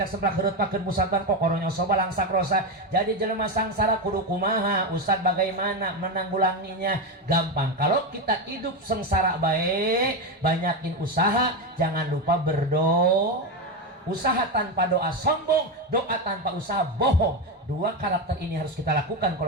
semplak heureuh pakeun musaban kokoronya soba langsak rosa. Jadi jelema sangsara kudu kumaha? Ustaz bagaimana menanggulanginya? Gampang. Kalau kita hidup sengsara bae, banyakin usaha, jangan lupa berdoa. Usaha tanpa doa sombong, doa tanpa usaha bohong. 2 karakter ini harus kita lakukan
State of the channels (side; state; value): both; normal; correlation 0.12